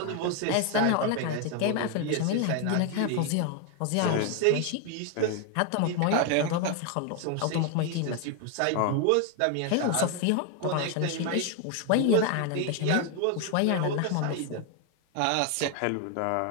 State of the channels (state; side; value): different; both; correlation 0.01